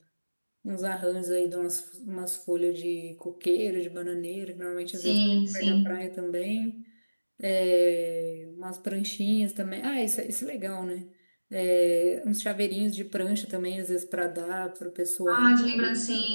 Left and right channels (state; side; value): inverted; both; correlation -1.00